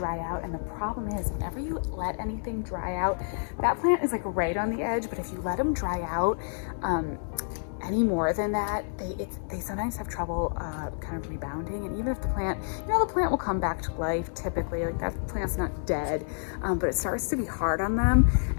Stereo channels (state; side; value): silent; right; digital silence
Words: out. And the problem is, whenever you let anything dry out, that plant is like right on the edge, but if you let them dry out any more than that, they sometimes have trouble kind of rebounding. And even if the plant, the plant will come back to life typically, like that plant's not dead, but it starts to be hard on them.